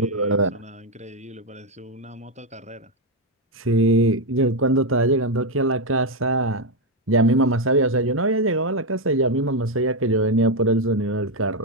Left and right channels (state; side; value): normal; both; correlation 0.04